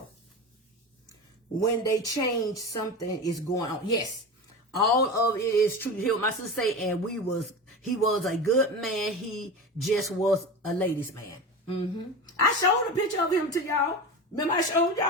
When they change, something is going on. Yes, all of it is true. You hear what my sister say? And he was a good man. He just was a ladies' man. I showed a picture of him to y'all. Remember I showed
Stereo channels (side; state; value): both; normal; correlation 0.27